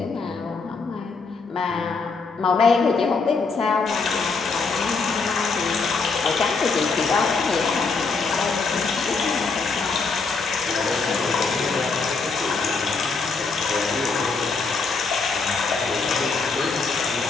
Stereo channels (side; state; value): right; quieter; 4.5 dB